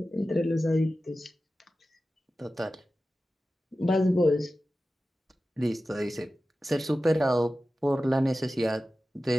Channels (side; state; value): both; normal; correlation 0.94